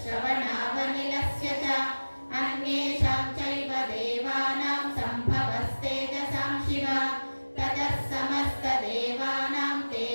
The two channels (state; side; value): inverted; both; correlation -1.00